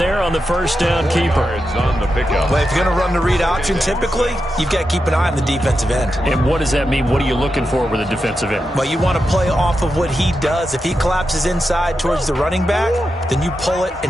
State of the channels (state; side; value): normal; both; correlation 0.88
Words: on the first down keeper. Well, if you're going to run the read option, typically, you've got to keep an eye on the defensive end. And what does that mean? What are you looking for with a defensive end? Well, you want to play off of what he does. If he collapses inside towards the running back, then you pull it